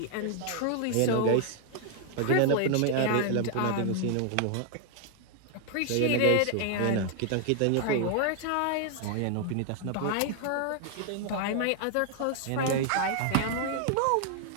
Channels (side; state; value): both; different; correlation 0.00